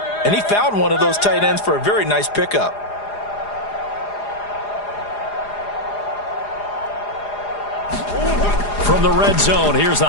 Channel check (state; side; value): late; right; 4.9 ms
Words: and he found one of those tight ends for a very nice pickup. From the red zone, here's the